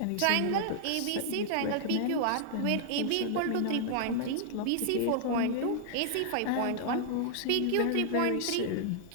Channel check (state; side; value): different; both; correlation 0.00